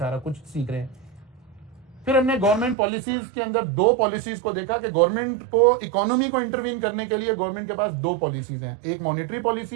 कुछ सीख रहे हैं। फिर हमने गवर्नमेंट पॉलिसीज के अंदर 2 पॉलिसीज को देखा कि गवर्नमेंट को इकोनॉमी को इंटरवीन करने के लिए गवर्नमेंट के पास 2 पॉलिसीज हैं, एक मॉनेटरी पॉलिसी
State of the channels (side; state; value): left; drops out; at 2.8 s